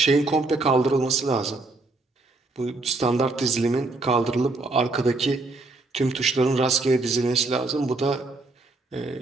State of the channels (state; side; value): quieter; left; 3.3 dB